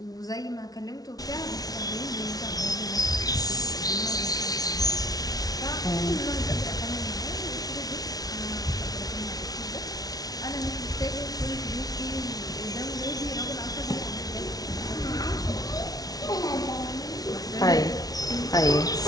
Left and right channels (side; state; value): right; late; 0.18 ms